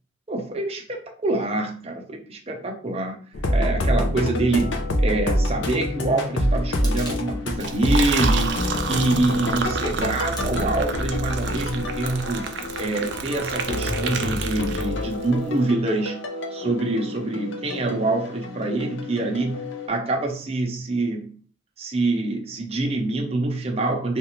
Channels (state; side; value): normal; both; correlation 0.60